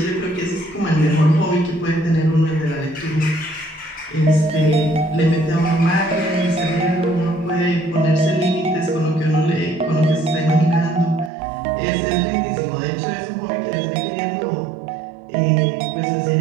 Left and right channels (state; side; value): drops out; left; at 11.3 s